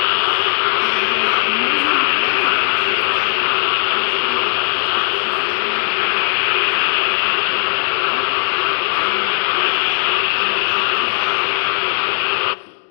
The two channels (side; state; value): right; silent; digital silence